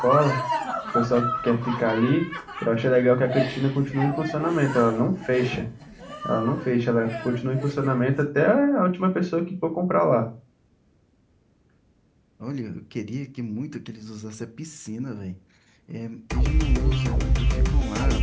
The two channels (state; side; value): identical; both; correlation 1.00